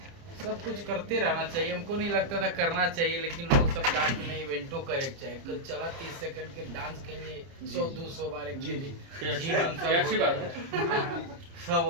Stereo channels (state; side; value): late; left; 30 ms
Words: सब कुछ करते रहना चाहिए। हमको नहीं लगता था करना चाहिए, लेकिन लोग सब कहा कि नहीं इवेंटो करे चाहिए। कल चला 30 सेकंड के डांस के लिए 100-200 बार एक सब